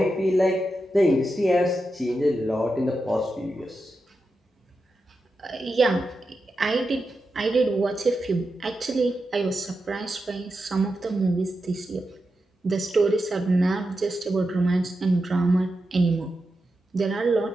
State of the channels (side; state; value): both; normal; correlation 0.89